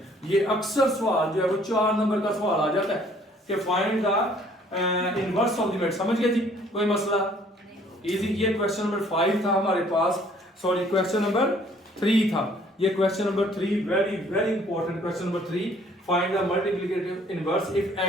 ये अक्सर सवाल जो है वो 4 नंबर का सवाल आ जाता है कि find the inverse of the matrix. समझ गए जी, कोई मसला इजी। ये क्वेश्चन नंबर 5 था हमारे पास, सॉरी क्वेश्चन नंबर 3 था। ये question number 3 very very important question number 3, find the multiplicative inverse if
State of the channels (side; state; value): both; normal; correlation 0.59